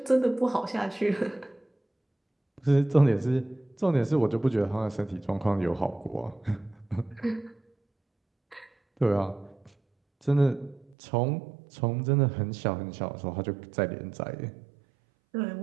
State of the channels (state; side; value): drops out; left; at 11.0 s